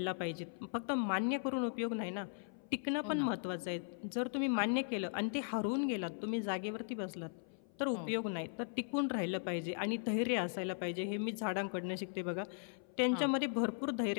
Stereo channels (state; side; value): silent; right; 52 dB below the other